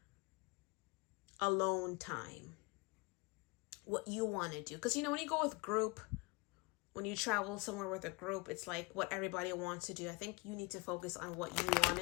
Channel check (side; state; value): right; quieter; 26.7 dB